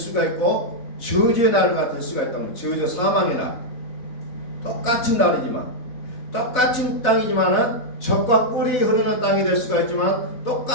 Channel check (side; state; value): right; late; 4.0 ms